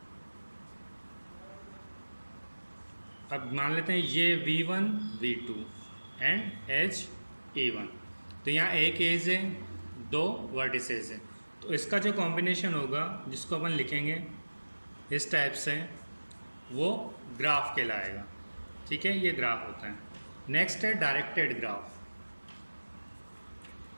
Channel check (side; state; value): both; inverted; correlation -1.00